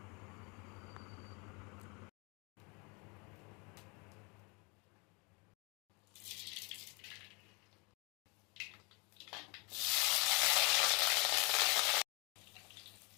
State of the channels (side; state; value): right; quieter; 30.4 dB